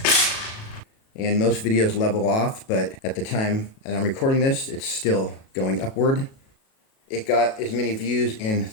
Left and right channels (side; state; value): right; late; 37 ms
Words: And most videos level off, but at the time that I'm recording this, it's still going upward. It got as many views in